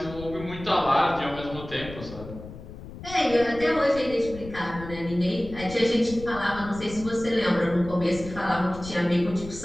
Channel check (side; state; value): left; noise; rumble, 13 dB below the sound